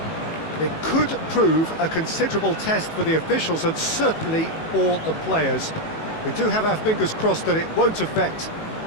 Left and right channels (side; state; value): right; late; 19 ms